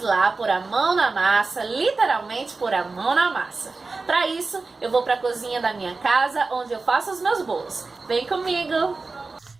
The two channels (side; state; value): left; quieter; 3.9 dB